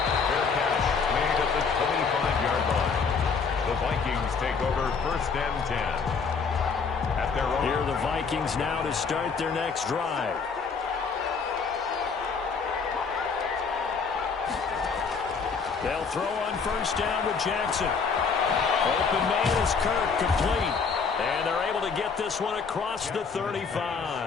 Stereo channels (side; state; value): right; quieter; 5.3 dB